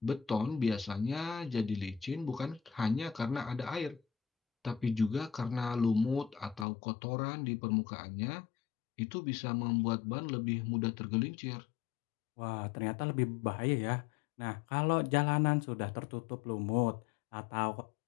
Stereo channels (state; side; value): drops out; right; at 6.7 s